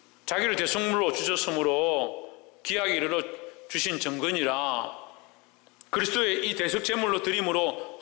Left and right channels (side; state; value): right; quieter; 26.9 dB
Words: 자기를 대속물로 주셨으므로 기약에 이르러 주신 정건이라 그리스도의 이 대속제물로 드림으로